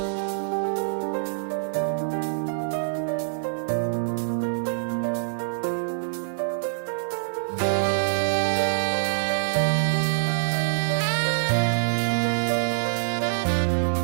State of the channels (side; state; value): left; silent; digital silence